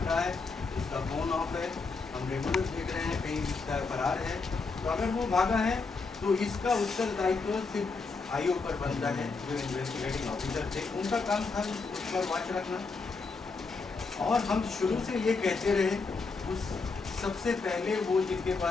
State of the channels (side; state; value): right; quieter; 4.3 dB